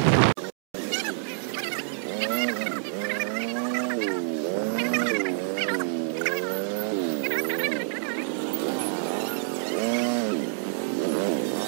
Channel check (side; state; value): left; silent; digital silence